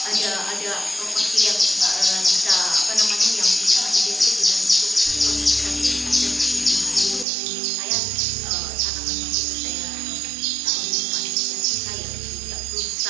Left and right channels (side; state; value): left; drops out; at 7.2 s